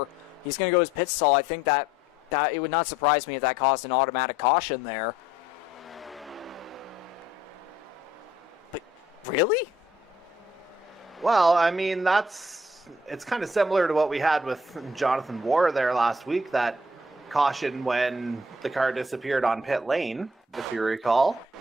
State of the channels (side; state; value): both; normal; correlation 0.62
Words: He's going to go his pit stall. I think that it would not surprise me if that caused an automatic caution there. But really? Well, I mean, it's kind of similar to what we had with Jonathan Warr there last week, that caution when the car disappeared on pit lane, if you recall.